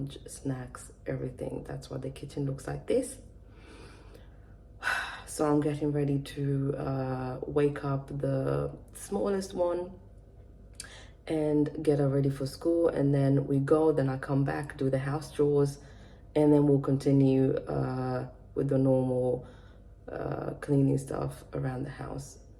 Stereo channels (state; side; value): identical; both; correlation 1.00